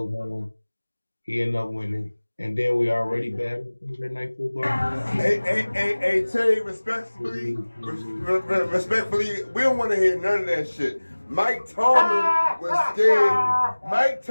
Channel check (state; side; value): inverted; both; correlation -1.00